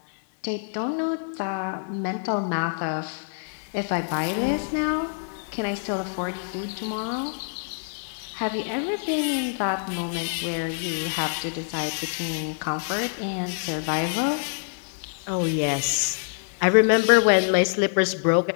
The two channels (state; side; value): silent; right; digital silence